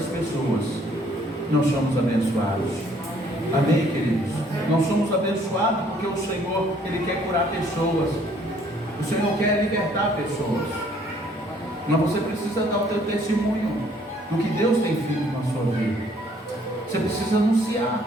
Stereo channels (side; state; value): both; normal; correlation 0.62